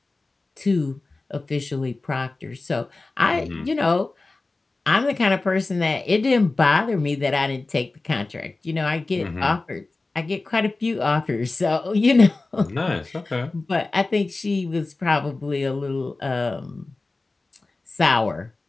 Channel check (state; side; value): quieter; right; 3.4 dB